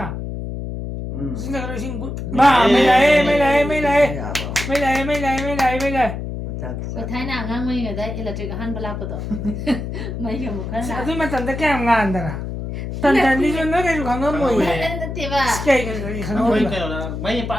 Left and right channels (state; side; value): noise; left; hum, 6 dB below the sound